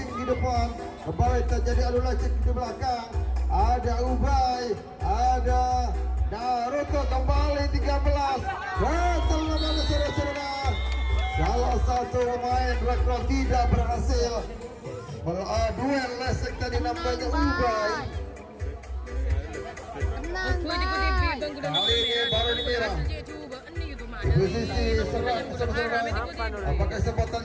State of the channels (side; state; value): both; identical; correlation 1.00